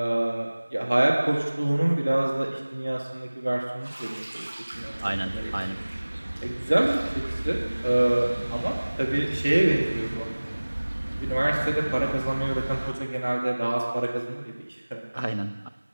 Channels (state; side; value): inverted; both; correlation -1.00